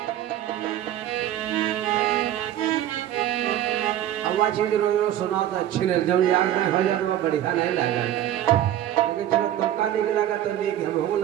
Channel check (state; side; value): quieter; left; 12.0 dB